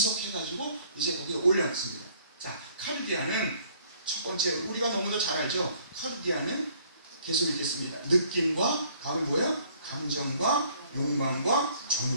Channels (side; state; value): both; inverted; correlation -0.60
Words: 이제 거기에 올려놨습니다. 자, 카르디아는 첫 번째, 우리가 너무도 잘 알죠? 카르디아는 계속 읽겠습니다. 느낌과, 다음은 뭐예요? 감정과 욕망과